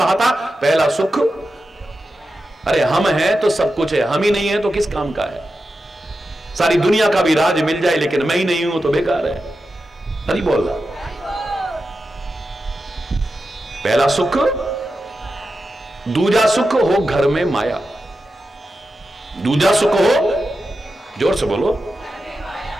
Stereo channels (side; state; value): both; normal; correlation 0.90